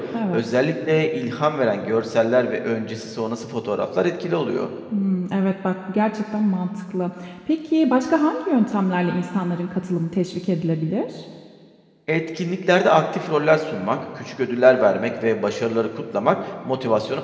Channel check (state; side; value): identical; both; correlation 1.00